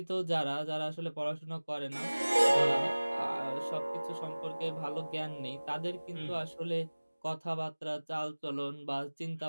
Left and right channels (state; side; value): inverted; both; correlation -1.00